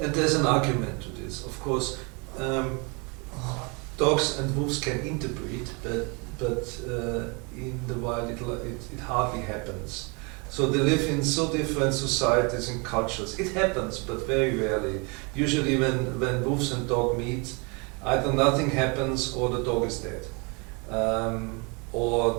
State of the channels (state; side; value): quieter; left; 31.3 dB